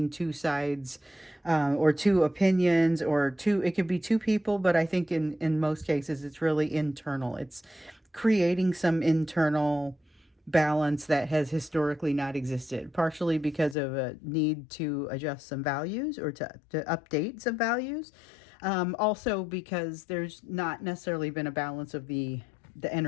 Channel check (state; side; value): drops out; right; at 13.8 s